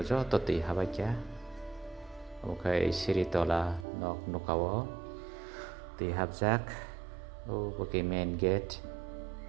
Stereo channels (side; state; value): left; drops out; at 3.9 s